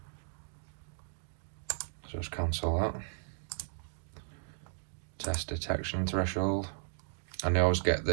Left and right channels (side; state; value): left; silent; digital silence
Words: So just cancel that. Test detection threshold. And I always get